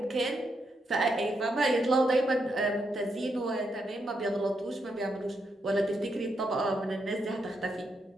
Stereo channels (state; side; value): normal; both; correlation 0.81